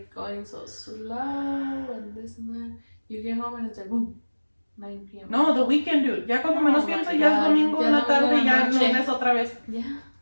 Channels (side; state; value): both; inverted; correlation -1.00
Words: going so slow and this and that. You get home and it's like, boom, 9 p.m. no, the weekend, dude. Ya cuando menos Oh pienso, my ya es God. domingo Ya en la domingo tarde en y la ya noche. lunes otra vez. Yeah.